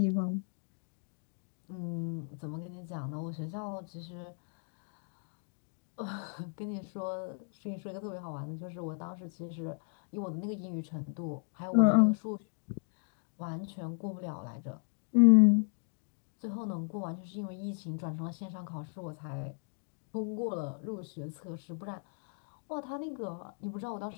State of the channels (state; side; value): silent; right; 54 dB below the other